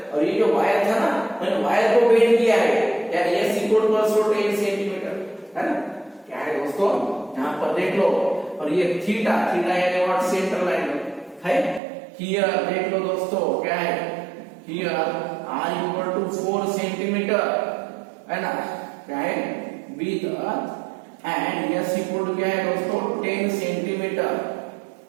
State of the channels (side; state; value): left; drops out; at 11.8 s